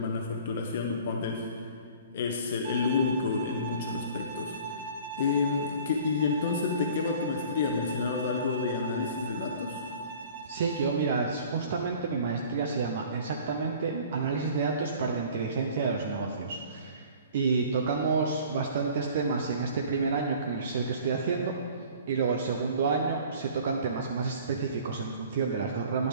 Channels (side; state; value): both; inverted; correlation -0.48